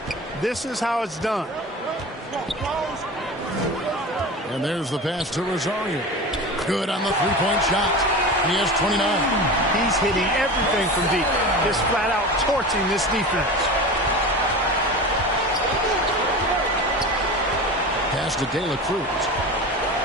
This is how it's done. And there's the pass to Rosario. Good on the three-point shot. He has 29. He's hitting everything from deep. Just flat out torching this defense. pass to De La Cruz.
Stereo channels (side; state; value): both; normal; correlation 0.30